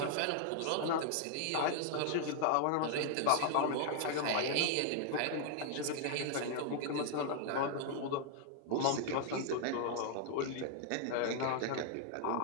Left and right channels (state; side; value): different; both; correlation 0.00